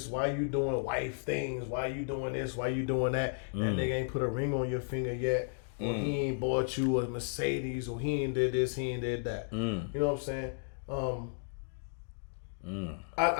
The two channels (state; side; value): silent; right; digital silence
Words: why you doing wife things? Why you doing this? Why you doing that? That nigga ain't put a ring on your finger yet. Or he ain't bought you a Mercedes, or he ain't did this, he ain't did that. You know what I'm saying?